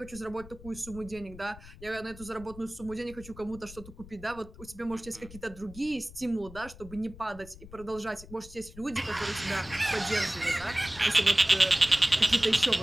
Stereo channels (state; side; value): noise; left; rumble, 17 dB below the sound